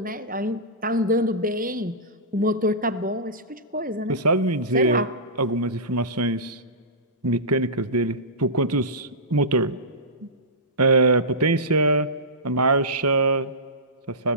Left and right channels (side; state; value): both; normal; correlation -0.18